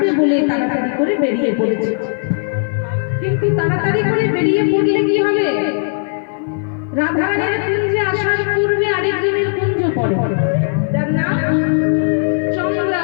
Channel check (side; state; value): right; silent; 57 dB below the other